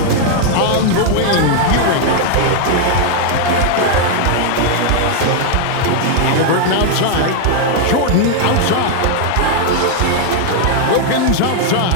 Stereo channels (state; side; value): different; both; correlation 0.00